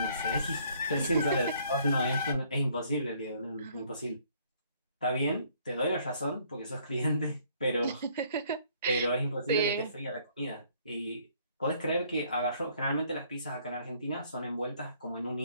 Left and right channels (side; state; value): both; inverted; correlation -0.63